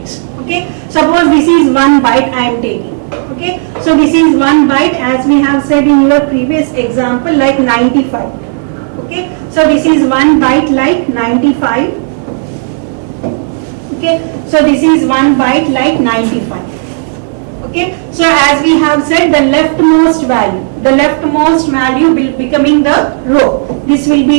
Okay, suppose this is 1 byte I am taking. Okay, so this is 1 byte, as we have said in your previous example, like 95. Okay, so this is 1 byte like 95. Okay, so this is 1 byte like 95. Okay, so as we have said, the leftmost value will becoming the row. This will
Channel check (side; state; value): left; silent; digital silence